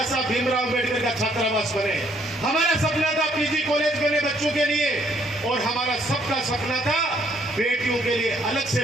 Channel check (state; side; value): normal; both; correlation 0.67